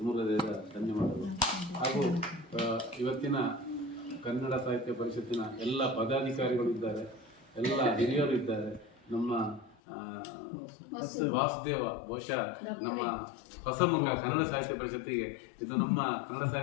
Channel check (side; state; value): right; drops out; at 9.8 s